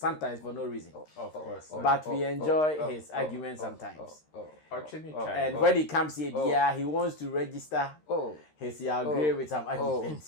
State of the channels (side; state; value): right; late; 13 ms